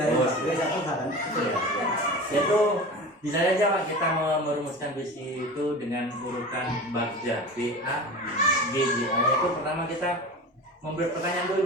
Oh, 41 hal kan? Itu bisa saja Pak kita merumuskan visi itu dengan urutan Bagja, B A G J A. Itu pertama kita memberi pertanyaan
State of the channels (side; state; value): both; normal; correlation 0.32